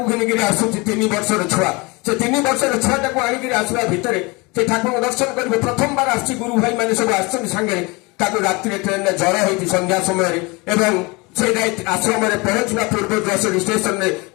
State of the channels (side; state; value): right; quieter; 26.3 dB